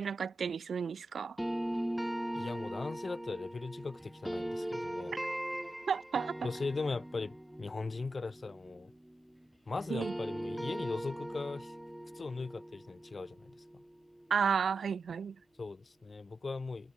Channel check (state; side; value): normal; both; correlation 0.90